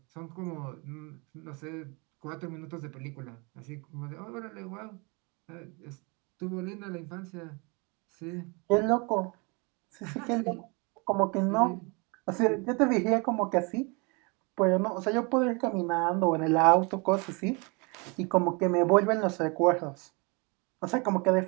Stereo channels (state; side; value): quieter; left; 30.3 dB